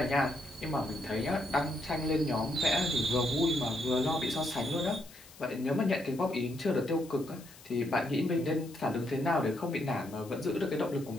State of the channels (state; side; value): noise; left; hiss, 21 dB below the sound